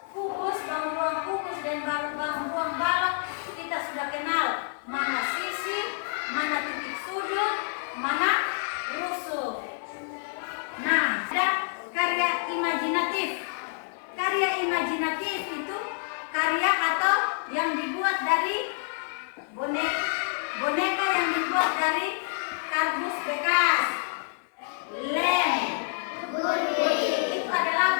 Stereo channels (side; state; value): right; silent; 59 dB below the other